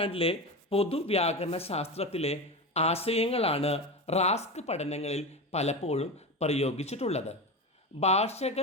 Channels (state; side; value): normal; both; correlation 0.22